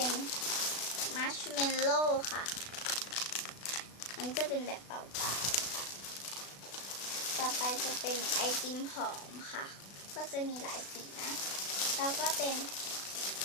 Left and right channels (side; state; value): right; late; 36 ms